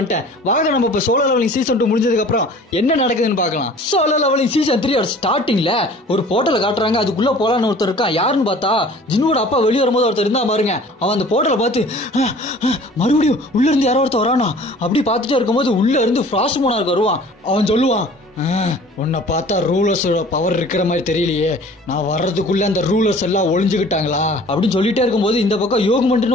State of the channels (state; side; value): normal; both; correlation 0.48